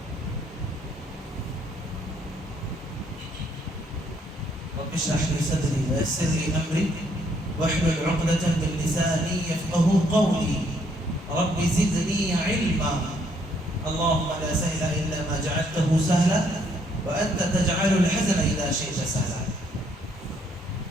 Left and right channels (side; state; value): both; normal; correlation 0.68